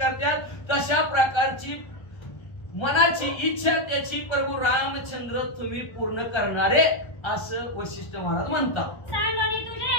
तशा प्रकारची मनाची इच्छा त्याची प्रभू रामचंद्र तुम्ही पूर्ण करणारे असं वशिष्ठ महाराज म्हणतात. सांगोनी तुझे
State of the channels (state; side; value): late; right; 1.3 ms